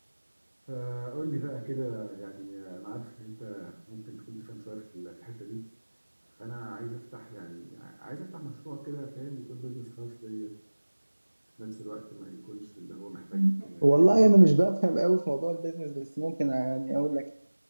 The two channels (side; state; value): both; inverted; correlation -1.00